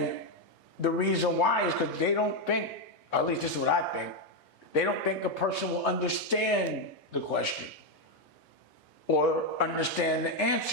the reason why is because they don't think, or at least this is what I think, they don't think a person will understand the question or understand the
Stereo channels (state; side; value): normal; both; correlation 0.04